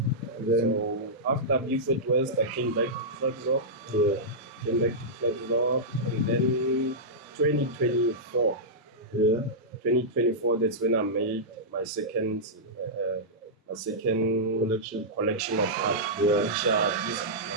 after Beaufort West, I came back to Klerksdorp. And then 2024. 2024, that's when I made my second collection of art.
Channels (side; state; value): both; normal; correlation -0.12